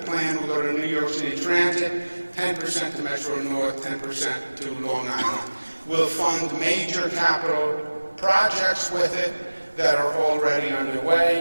will go to New York City Transit, 10% to Metro North, 10% to Long Island. We'll fund major capital projects with it that are already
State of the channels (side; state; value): both; inverted; correlation -1.00